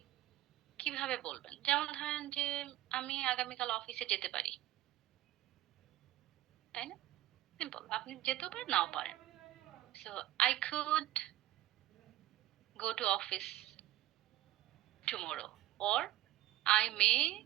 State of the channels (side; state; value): left; quieter; 14.7 dB